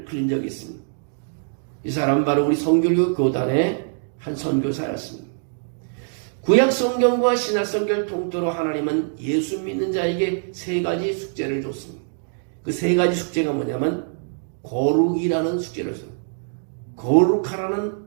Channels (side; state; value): left; silent; 63 dB below the other